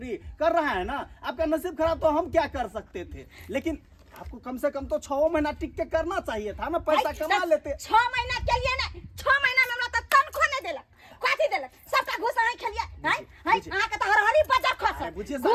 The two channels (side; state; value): both; identical; correlation 1.00